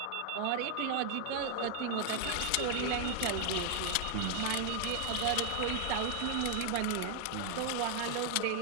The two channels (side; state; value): both; different; correlation 0.00